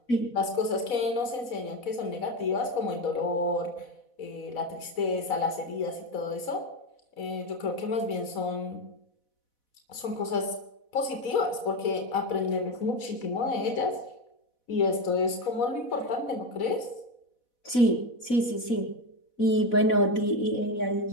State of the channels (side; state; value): right; late; 4.1 ms